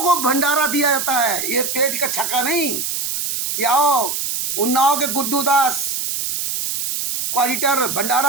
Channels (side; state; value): right; noise; hiss, 2 dB below the sound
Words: को भंडारा दिया जाता है, ये पेट का छक्का नहीं। आओ उन्नाव के गुड्डू दास क्वालिटर